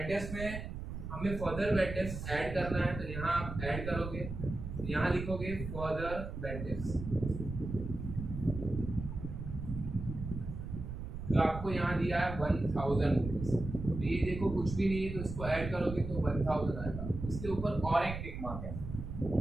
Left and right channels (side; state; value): right; noise; rumble, 7 dB below the sound